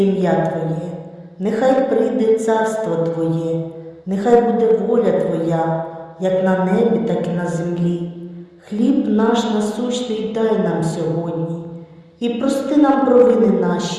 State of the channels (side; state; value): both; identical; correlation 1.00